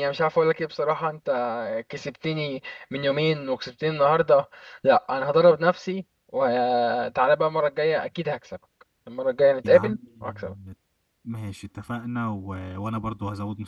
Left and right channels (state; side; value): identical; both; correlation 1.00